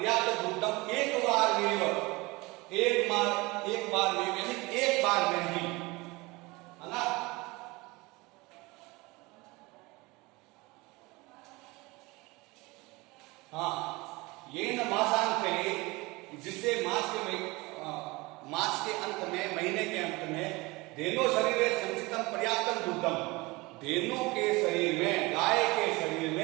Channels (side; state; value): left; quieter; 23.4 dB